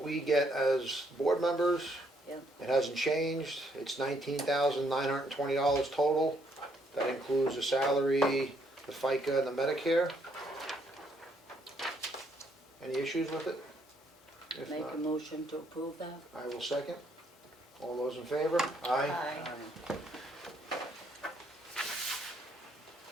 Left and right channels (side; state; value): both; normal; correlation 0.71